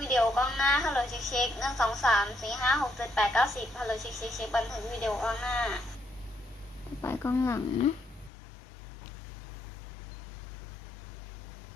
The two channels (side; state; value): right; drops out; at 8.3 s